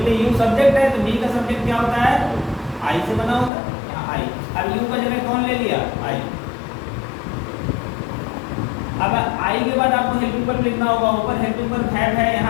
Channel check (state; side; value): drops out; right; at 3.5 s